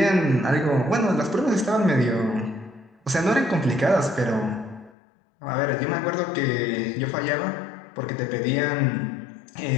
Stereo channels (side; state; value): right; drops out; at 5.0 s